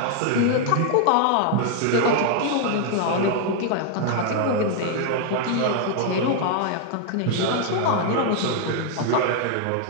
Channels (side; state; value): both; different; correlation 0.00